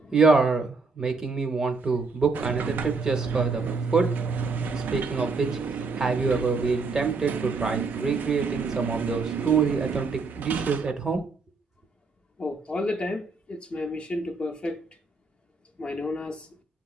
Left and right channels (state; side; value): quieter; left; 4.1 dB